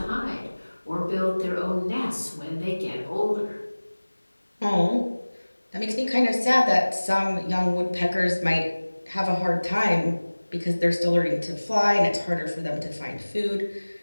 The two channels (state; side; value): inverted; both; correlation -1.00